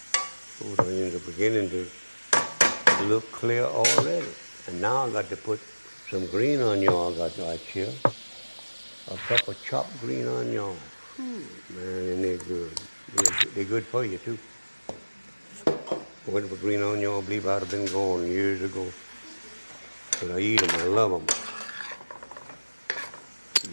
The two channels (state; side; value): inverted; both; correlation -1.00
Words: Food onions are beginning to look clear already. And now I got to put some green onion I got right here. A cup of chopped green onion. Man, and they're good. They're good for you, too. Went for green onion, I believe I'd have been gone years ago. But I eat them, I love them.